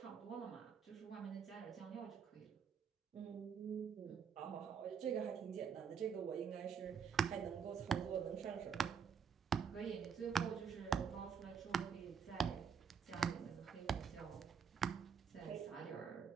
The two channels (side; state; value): left; quieter; 6.9 dB